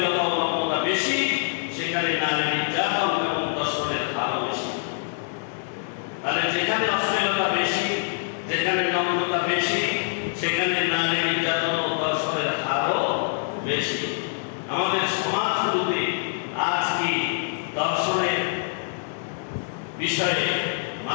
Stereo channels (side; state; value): right; silent; digital silence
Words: ও নগ্নতা বেশি, সেখানে নারী নির্যাতন এবং ধর্ষণের হারও বেশি। তাহলে যেখানে অশ্লীলতা বেশি, যেখানে নগ্নতা বেশি, সেখানে নারী নির্যাতন ও ধর্ষণের হারও বেশি। আমাদের সমাজগুলোতে আজ কি ধর্ষণের বিষয়ে